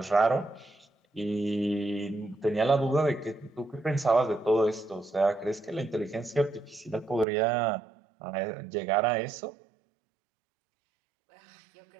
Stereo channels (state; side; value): drops out; left; at 7.2 s